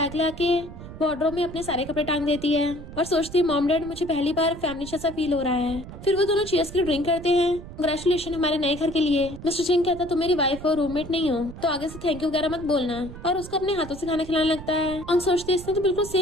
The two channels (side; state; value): right; noise; rumble, 13 dB below the sound